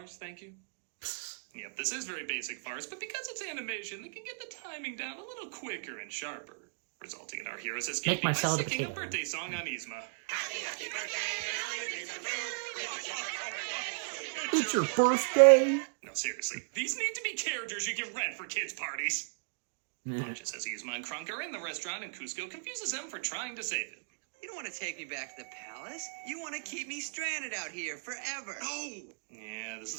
thank you. Yep, this is very basic farce, but because it's animation, they can get the timing down a little quicker and sharper, resulting in our heroes escaping my by salad a singing a potato. birthday song on Yzma. It's your birthday. No, seriously, these need to be characters you can rent for kids' parties. Pacha says Yzma and Kronk are in the restaurant, and Cusco confuses them for trying to save him. You don't want to take me back to the palace. You want to keep me stranded out here forever. No! Yeah, this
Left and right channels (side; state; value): left; silent; digital silence